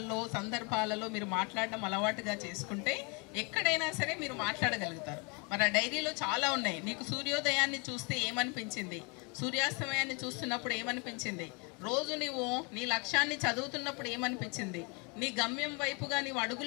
సందర్భాలలో మీరు మాట్లాడడం అలవాటుగా చేసుకుంటే ఎక్కడైనా సరే మీరు మాట్లాడగలుగుతారు. మరి ఆ డైరీలో చాలా ఉన్నాయి. నీకు సూర్యోదయాన్ని చూస్తే ఏమనిపించింది, సూర్యాస్తమయాన్ని చూస్తున్నప్పుడు ఏమనిపించింది, రోజు నువ్వు నీ లక్ష్యాన్ని చదువుతున్నప్పుడు ఏమనిపించింది, నీ గమ్యం వైపుగా నీవు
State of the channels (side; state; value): right; quieter; 32.3 dB